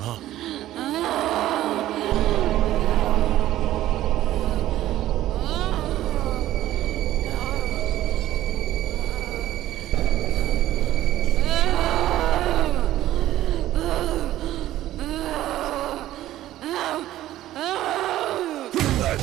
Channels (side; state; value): left; quieter; 14.1 dB